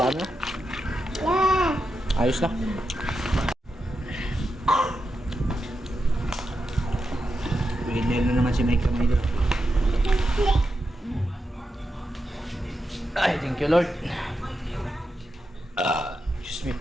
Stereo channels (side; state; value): both; normal; correlation 0.87